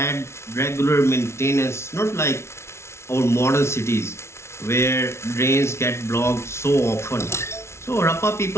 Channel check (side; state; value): right; late; 0.13 ms